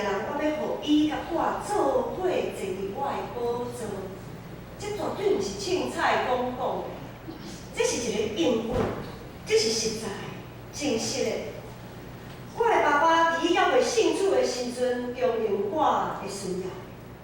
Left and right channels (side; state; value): both; identical; correlation 1.00